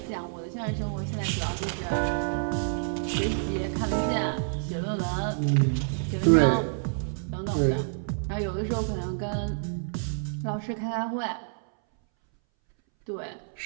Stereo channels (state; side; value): silent; left; 59 dB below the other